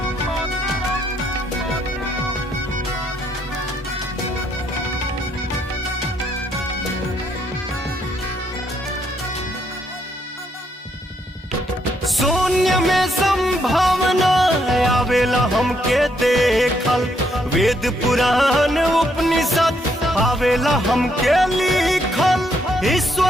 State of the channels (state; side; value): normal; both; correlation 0.74